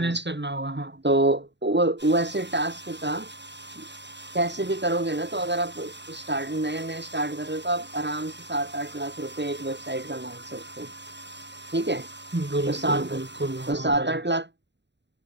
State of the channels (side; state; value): left; late; 0.51 ms